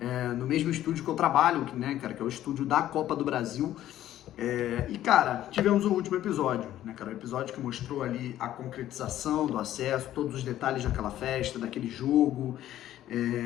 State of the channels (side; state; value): right; quieter; 12.8 dB